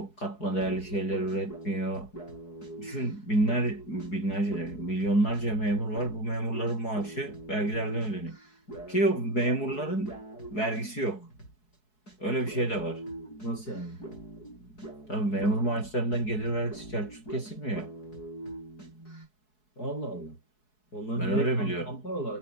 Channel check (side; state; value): right; late; 4.7 ms